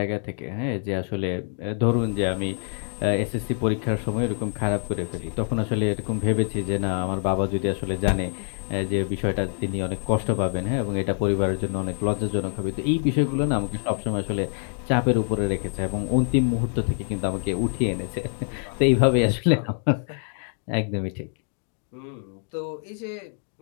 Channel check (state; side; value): silent; right; 61 dB below the other